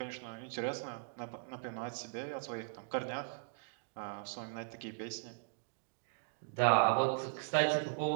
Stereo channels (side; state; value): left; silent; digital silence